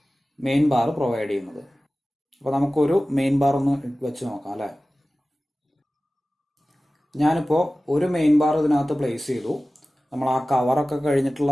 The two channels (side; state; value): both; normal; correlation 0.96